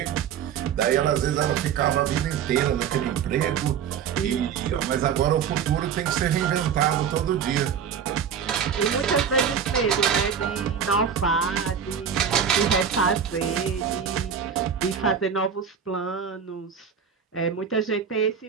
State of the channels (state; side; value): quieter; left; 7.7 dB